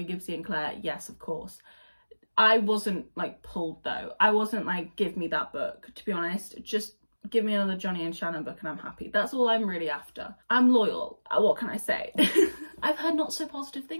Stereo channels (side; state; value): both; inverted; correlation -1.00